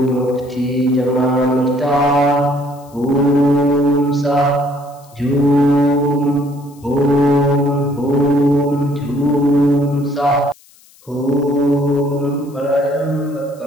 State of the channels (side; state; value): left; noise; hiss, 28 dB below the sound